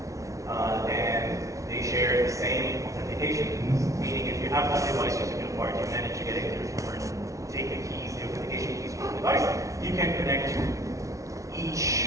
And they share the same authentication keys. Meaning if you have one device using a card, you manage to get into your phone and take the keys, the authentication keys from the device, you can connect to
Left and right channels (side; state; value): left; late; 0.15 ms